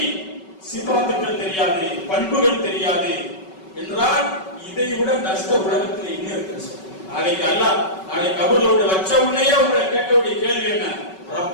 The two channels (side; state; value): right; late; 5.3 ms